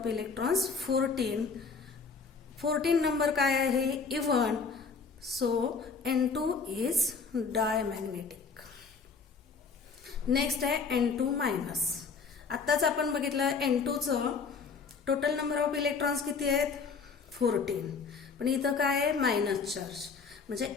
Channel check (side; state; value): right; quieter; 5.1 dB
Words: electrons 14 number काय आहे, even. So N2 is diamagnetic. Next आहे N2 मायनस. आत्ताच आपण बघितलं N2चं टोटल नंबर ऑफ इलेक्ट्रॉन्स किती आहेत, 14. पण इथं काय आहे, मायनस चार्ज, म्हणजे